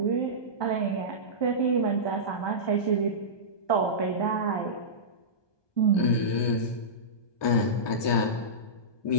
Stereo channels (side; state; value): right; late; 1.2 ms